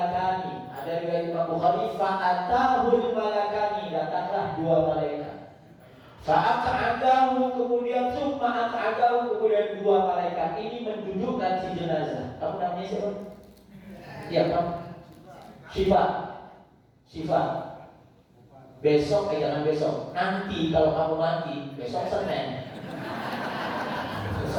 Ada riwayat Imam Bukhari, fa'atahul malakani, datanglah dua malaikat. Fa'aq'adahu, kemudian summa aq'adahu, kemudian dua malaikat ini mendudukkan si jenazah. Kamu namanya siapa? Iya, kamu. Syifa. Besok, jangan besok. Nanti kalau kamu mati, besok Senin.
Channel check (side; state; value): both; identical; correlation 1.00